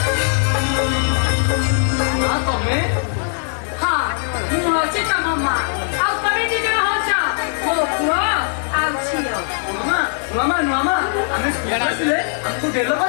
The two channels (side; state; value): right; silent; digital silence